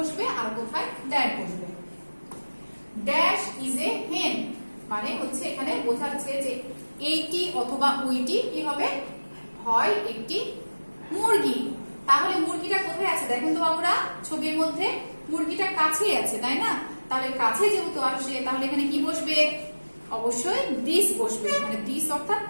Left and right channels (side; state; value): both; inverted; correlation -1.00